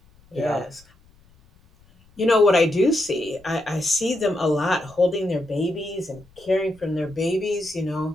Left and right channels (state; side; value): noise; left; rumble, 29 dB below the sound